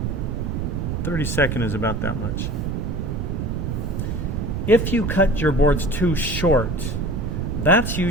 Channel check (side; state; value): right; noise; rumble, 2 dB below the sound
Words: 32nd is about that much. If you cut your boards too short, that's